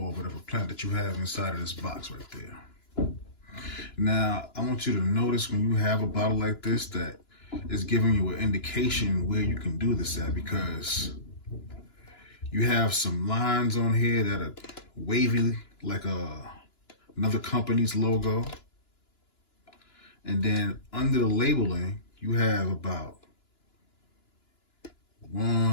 whatever plant that you have inside of this box right there. Now, I want you to notice when you have a bottle like this that it's giving you an indication where you can do this at, because you have some lines on here that are wavy like another company's logo. And then under the labeling, you have about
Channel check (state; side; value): late; right; 2.9 ms